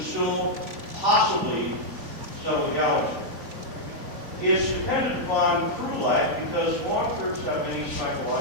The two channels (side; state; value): left; late; 3.4 ms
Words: possibly settle the galaxy. It's dependent upon crew life because long terms have many